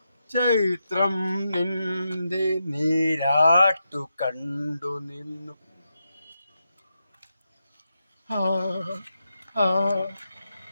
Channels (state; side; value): inverted; both; correlation -0.86